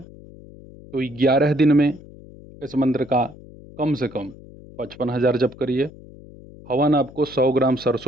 तो 11 दिन में इस मंत्र का कम से कम 55,000 जप करिए। हवन आपको 100 ग्राम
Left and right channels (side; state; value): left; noise; hum, 19 dB below the sound